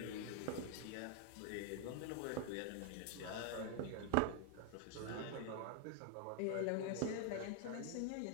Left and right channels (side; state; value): both; different; correlation 0.00